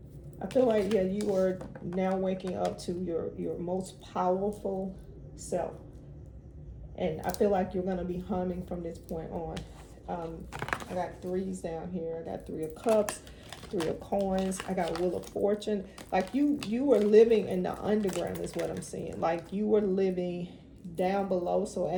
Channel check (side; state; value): both; identical; correlation 1.00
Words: I feel like, yeah, you are now waking up to your most powerful self. And I feel like you're going to be humming from this point on. I got 3s down here. I got 3 of Cups, 3 of Coins. I got Wheel of Fortune. Like you were living in the underground is what I'm seeing. Like you were living down below. So